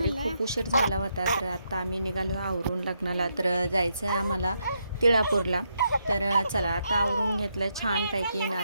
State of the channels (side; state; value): both; inverted; correlation -0.79